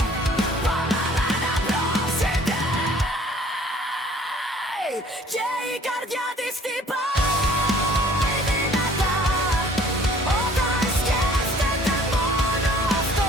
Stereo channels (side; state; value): both; normal; correlation 0.55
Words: πάμε να προσεχτεί. Και η καρδιά της χτυπάει.